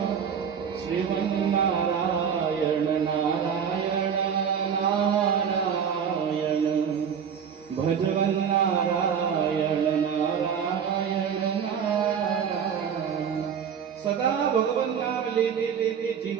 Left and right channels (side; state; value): left; quieter; 7.5 dB